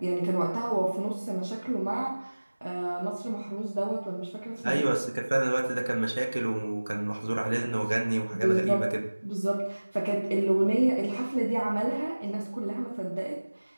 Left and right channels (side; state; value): both; inverted; correlation -1.00